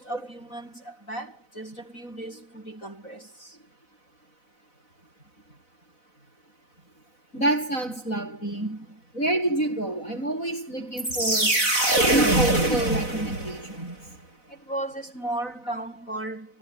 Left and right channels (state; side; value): late; right; 4.0 ms